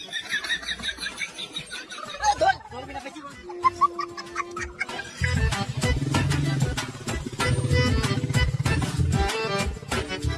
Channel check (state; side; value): identical; both; correlation 1.00